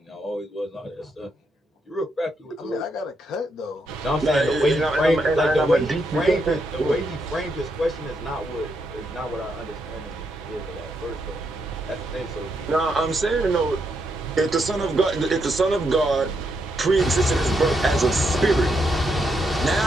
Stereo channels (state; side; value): normal; both; correlation 0.79